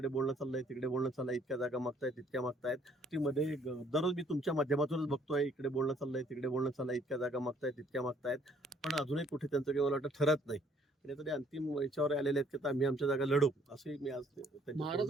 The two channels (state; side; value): normal; both; correlation 0.63